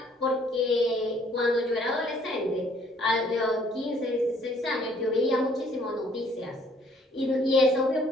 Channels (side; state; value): both; normal; correlation 0.62